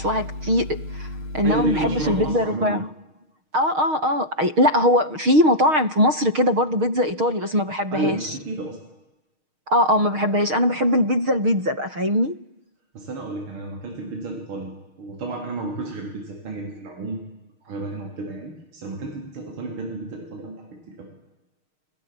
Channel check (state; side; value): late; left; 6.5 ms